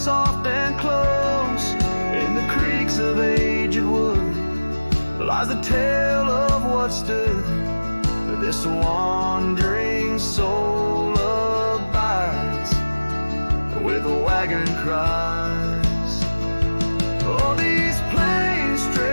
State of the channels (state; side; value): inverted; both; correlation -1.00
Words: and close. In the creaks of aged wood lies the tale of what stood. This wandering soul abides where the wagon cries. Oh, these plains